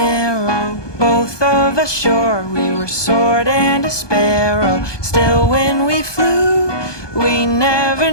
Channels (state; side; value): late; right; 1.2 ms